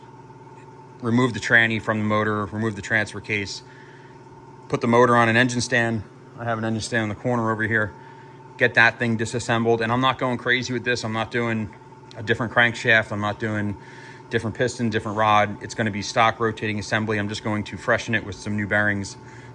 remove the tranny from the motor, remove the transfer case, put the motor on an engine stand. I have an engine stand in the corner over here. Get that thing disassembled. And I'm not going crazy with this. I'm not doing a different crankshaft. I'm not doing different piston, different rod. It's going to be stock rotating assembly. I'm just going to freshen it with some new bearings,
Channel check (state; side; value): identical; both; correlation 1.00